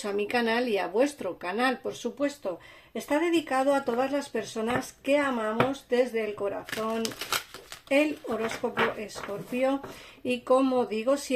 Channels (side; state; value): both; identical; correlation 1.00